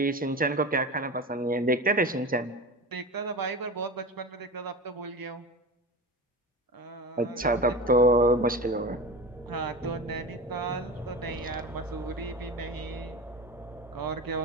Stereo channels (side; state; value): both; normal; correlation 0.29